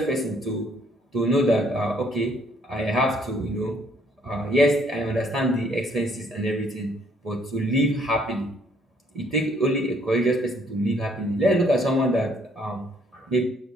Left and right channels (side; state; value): both; normal; correlation 0.65